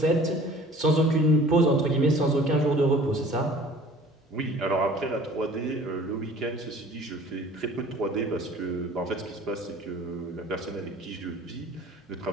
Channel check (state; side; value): normal; both; correlation 0.48